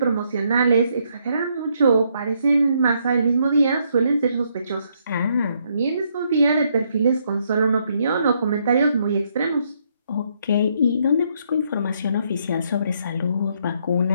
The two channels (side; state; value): both; inverted; correlation -0.73